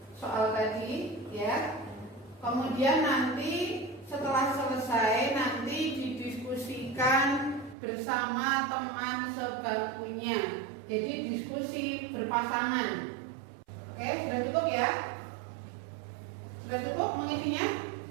soal tadi, ya. Kemudian nanti setelah selesai nanti didiskusikan bersama teman sebangkunya. Jadi diskusi berpasangan. Oke, sudah cukup ya? Sudah cukup mengisinya?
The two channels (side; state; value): left; drops out; at 7.8 s